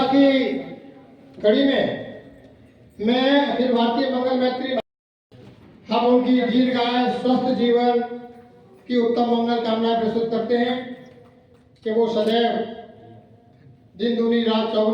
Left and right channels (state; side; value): identical; both; correlation 1.00